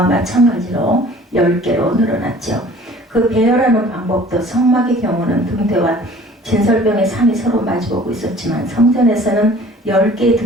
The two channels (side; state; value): both; normal; correlation 0.49